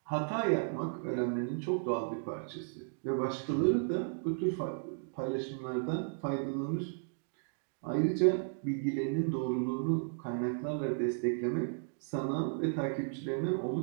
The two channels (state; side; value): silent; left; digital silence